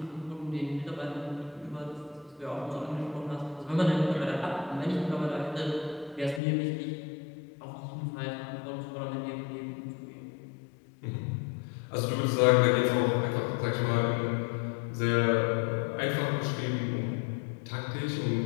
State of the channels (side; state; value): right; drops out; at 6.4 s